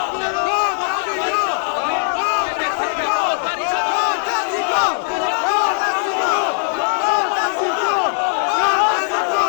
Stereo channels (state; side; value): silent; right; 66 dB below the other